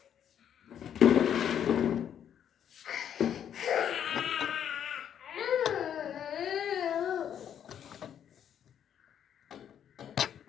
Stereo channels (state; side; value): quieter; right; 9.2 dB